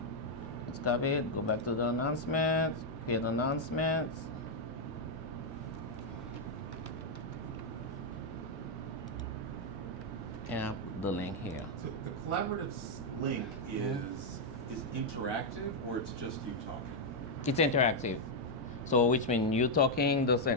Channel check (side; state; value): both; normal; correlation -0.02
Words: Let's copy it, go back to the announcements, create announcements. And I'll put the link here. So the collaborative link is interactive, or it's just you talking? It's interactive. So which means you talking the